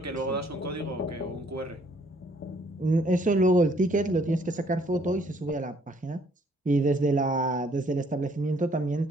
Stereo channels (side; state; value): both; normal; correlation 0.64